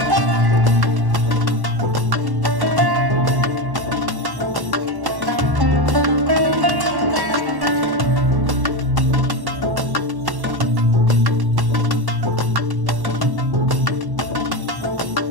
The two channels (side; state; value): left; late; 1.1 ms